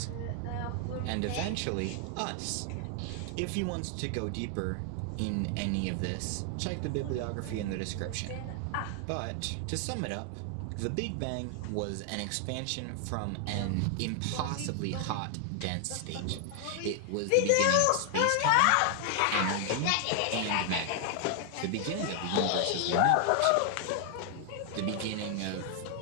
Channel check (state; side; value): different; both; correlation 0.00